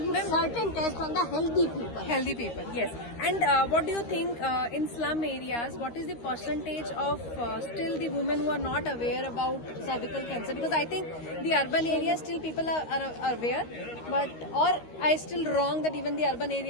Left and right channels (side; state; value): right; late; 13 ms